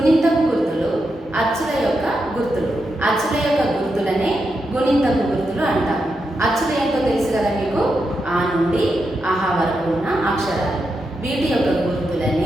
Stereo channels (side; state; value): both; normal; correlation 0.86